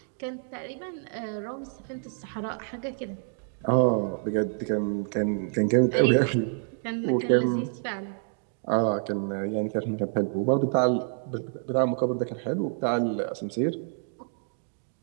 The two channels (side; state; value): left; silent; 59 dB below the other